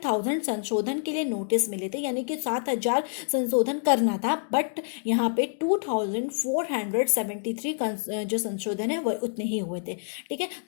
संशोधन के लिए नोटिस मिले थे, यानी कि 7000 संशोधन करना था, बट यहाँ पे 2473 जो संशोधन है वह उतने ही हुए थे। ठीक है,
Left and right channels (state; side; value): silent; right; digital silence